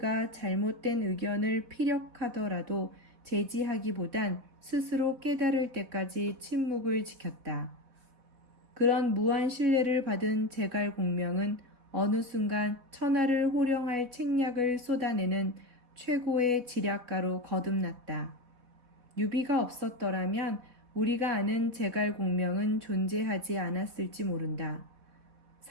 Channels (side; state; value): left; late; 4.1 ms